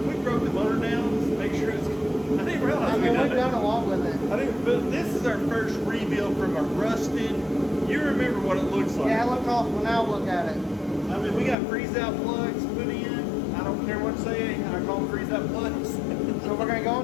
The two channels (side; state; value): right; drops out; at 11.6 s